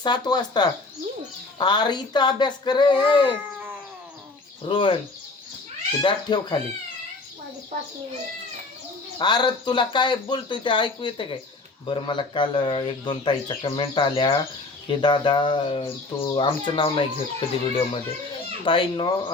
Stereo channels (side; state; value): right; quieter; 3.4 dB